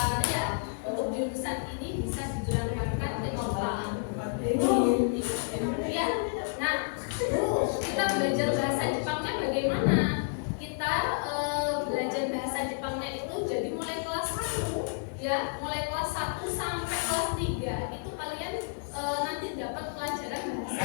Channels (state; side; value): silent; right; digital silence